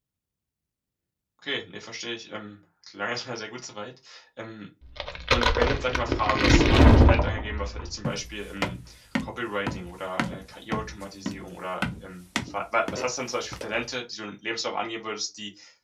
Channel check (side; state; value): both; identical; correlation 1.00